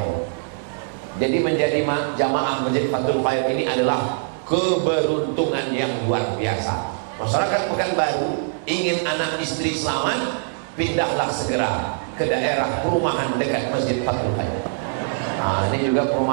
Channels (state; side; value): silent; left; digital silence